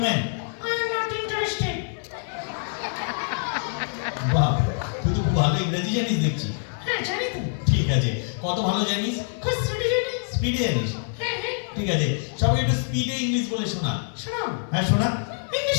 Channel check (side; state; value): right; silent; 57 dB below the other